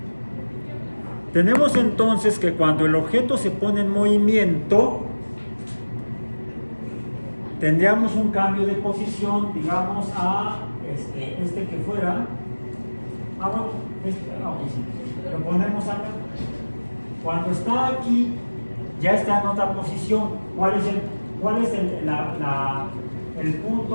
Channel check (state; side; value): inverted; both; correlation -1.00